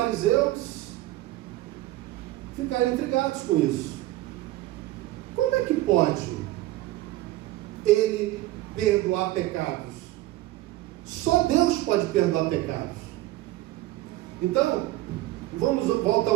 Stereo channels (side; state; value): left; quieter; 16.6 dB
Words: ficaram intrigados com isso. Como é que pode ele perdoar pecados? Só Deus pode perdoar pecados. Então, vamos voltar